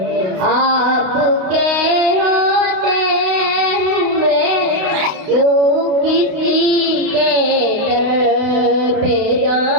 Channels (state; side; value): late; left; 32 ms